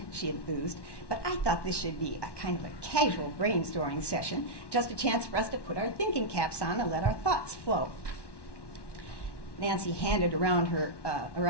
she enthused, "but I thought this should be a kind of a casual brainstorming session, just a chance for us to put our thinking caps on and let our thoughts flow." Nancy handed around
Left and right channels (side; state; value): right; late; 1.1 ms